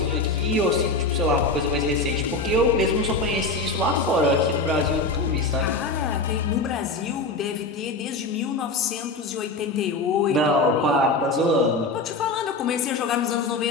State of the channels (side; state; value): right; quieter; 3.3 dB